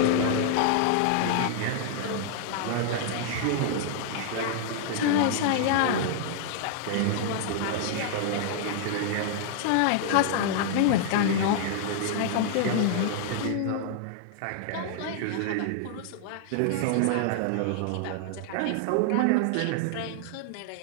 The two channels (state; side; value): different; both; correlation -0.01